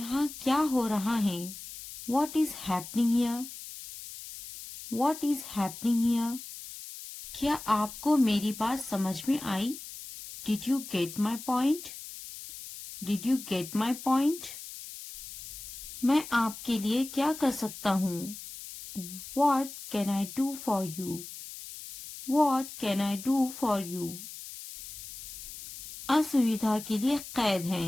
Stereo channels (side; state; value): left; noise; hiss, 12 dB below the sound